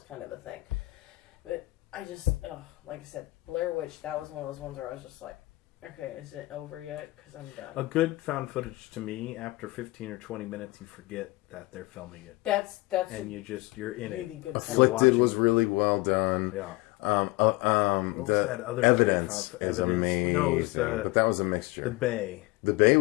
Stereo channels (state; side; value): quieter; right; 21.5 dB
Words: kind of a thing. But I just, like I said, Blair Witch, that was one of those ones where I was just like, okay, is it over yet? Because I'm done. A good found footage to me, after 15 or 20 minutes, you forget that they're filming it, That's and you're in really it. good. Afflicted watching- was really well done. Yeah. What was that other Evidence movie? is Evidence. amazing, No, it was but that was a mixture. The Bay. The Bay